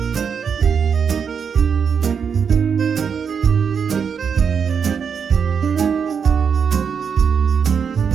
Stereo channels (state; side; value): quieter; left; 6.7 dB